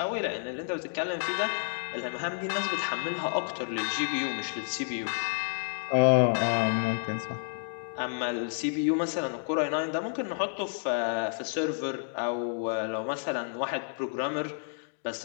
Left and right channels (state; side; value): silent; right; digital silence